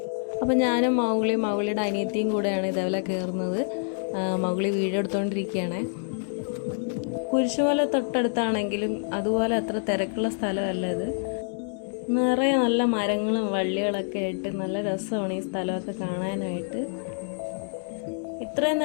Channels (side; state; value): right; silent; digital silence